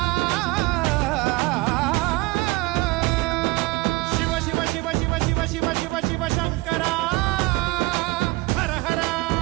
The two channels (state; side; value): quieter; left; 22.5 dB